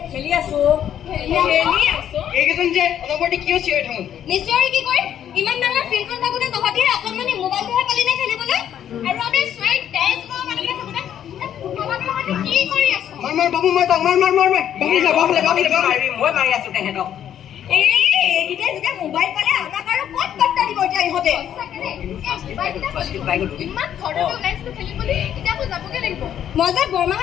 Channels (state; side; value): quieter; right; 10.1 dB